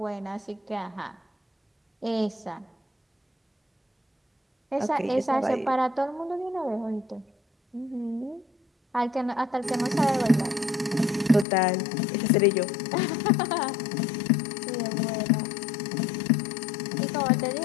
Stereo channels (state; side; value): drops out; right; at 11.5 s